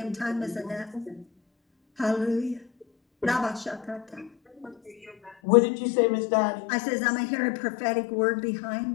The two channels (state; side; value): drops out; right; at 5.4 s